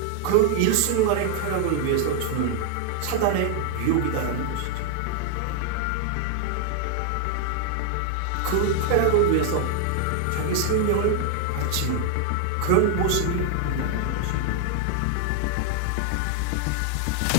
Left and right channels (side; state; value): both; different; correlation 0.00